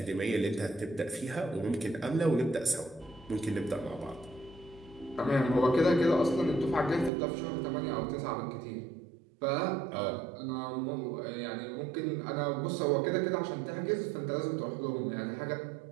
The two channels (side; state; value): left; drops out; at 7.1 s